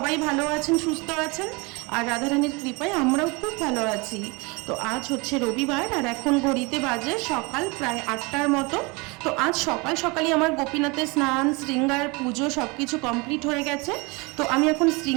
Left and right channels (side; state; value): left; quieter; 27.3 dB